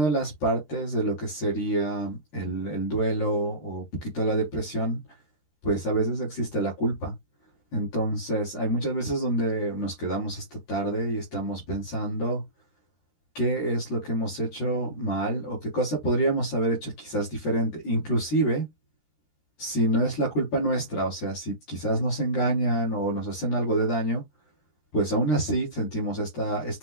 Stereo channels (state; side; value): late; right; 13 ms